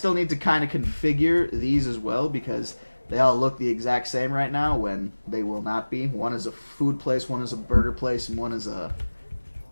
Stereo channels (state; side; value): inverted; both; correlation -1.00